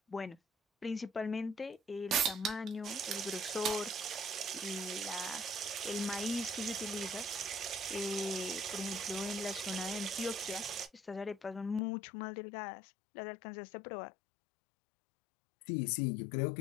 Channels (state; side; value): drops out; right; at 11.8 s